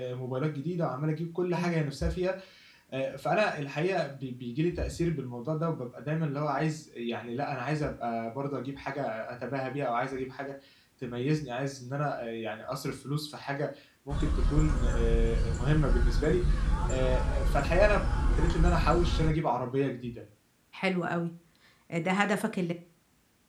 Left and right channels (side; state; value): both; identical; correlation 1.00